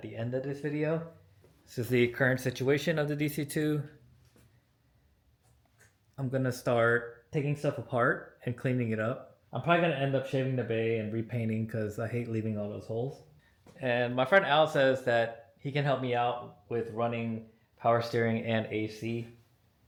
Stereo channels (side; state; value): both; identical; correlation 1.00